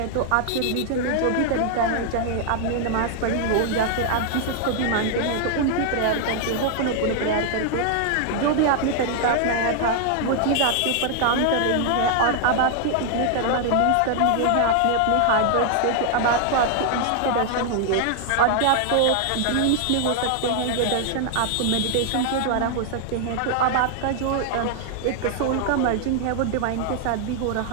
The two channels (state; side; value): different; both; correlation 0.00